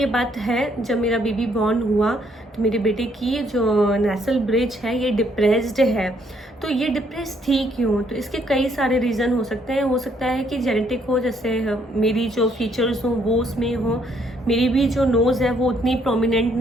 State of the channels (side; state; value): both; normal; correlation 0.69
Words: बात है, जब मेरा बेबी बॉर्न हुआ तो मेरे बेटे की जो नेसल ब्रिज है ये डिप्रेस्ड है। तो ये डिप्रेस थी क्यों, तो इसके कई सारे रीज़न हो सकते हैं। हो सकता है कि जेनेटिक हो, जैसे मेरी जो फीचर्स हों वो उसमें हो, मेरी भी जो नोज़ है वो उतनी प्रोमिनेंट